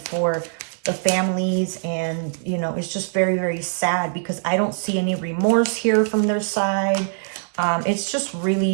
for the families, and you know, it's just very, very sad because I don't see any remorse here from their side. It's just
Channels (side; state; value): left; silent; digital silence